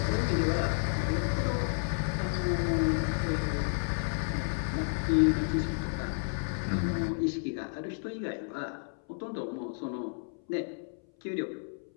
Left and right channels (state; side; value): silent; right; 57 dB below the other